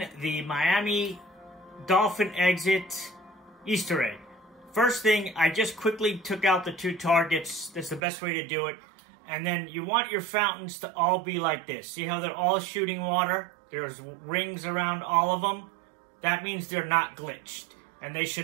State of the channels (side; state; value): left; drops out; at 8.0 s